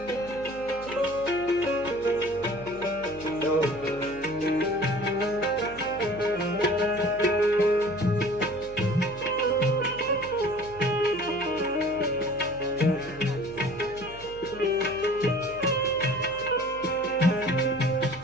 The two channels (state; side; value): noise; right; hum, 19 dB below the sound